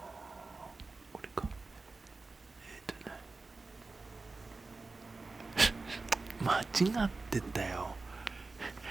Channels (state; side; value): quieter; left; 3.7 dB